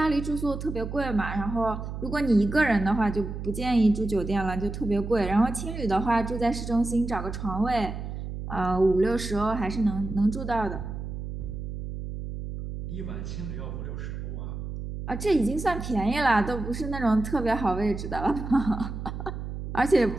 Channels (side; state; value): right; noise; hum, 7 dB below the sound